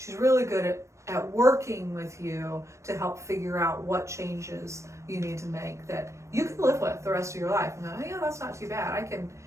really good at working with you to help figure out what changes you need to make that you can live with the rest of your life. And go, yeah, that's not too bad.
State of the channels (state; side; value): late; left; 0.14 ms